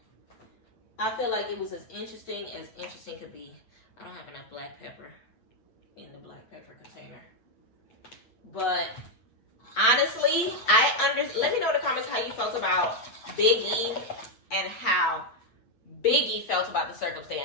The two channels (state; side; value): late; right; 8.4 ms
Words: I feel like it was as interesting could be. I don't have enough black pepper in the black pepper container. But honestly, let me know in the comments how you felt about Biggie and how Biggie felt about the